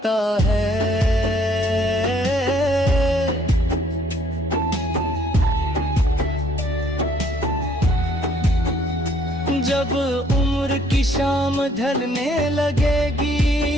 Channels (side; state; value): both; normal; correlation 0.63